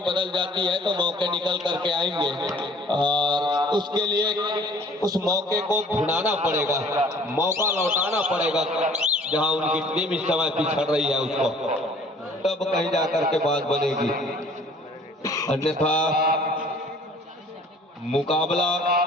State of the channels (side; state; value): both; normal; correlation 0.52